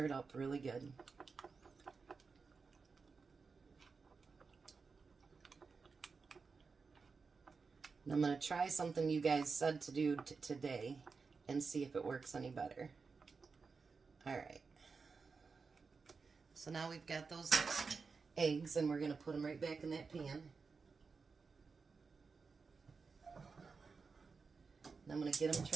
up really good. And I'm going to try something you guys said to do today and see if it works any better. Alright. So now we've got those eggs, and we're going to put them right back in that pan. And I'm going to get them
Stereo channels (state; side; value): quieter; left; 4.8 dB